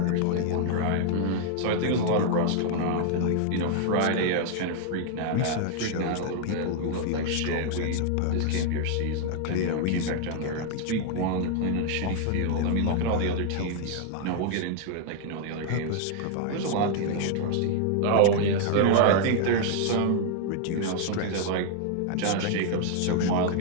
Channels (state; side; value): different; both; correlation 0.00